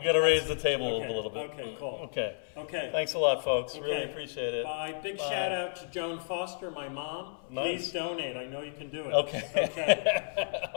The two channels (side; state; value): right; silent; 57 dB below the other